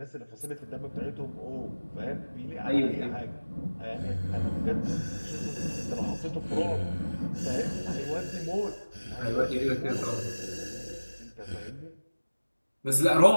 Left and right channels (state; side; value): inverted; both; correlation -1.00